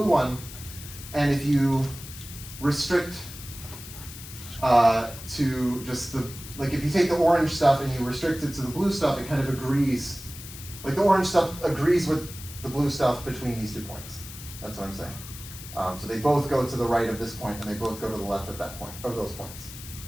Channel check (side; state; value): left; noise; hiss, 13 dB below the sound